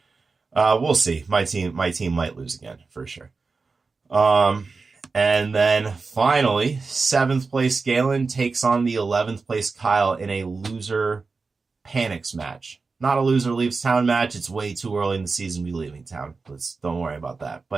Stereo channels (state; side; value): quieter; left; 4.3 dB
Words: We'll see. My team might lose again for sure. And then finally, 7th place Galen takes on the 11th place Kyle in a loser panics match. Not a loser leaves town match. It's way too early in the season to be leaving town. Don't worry about that.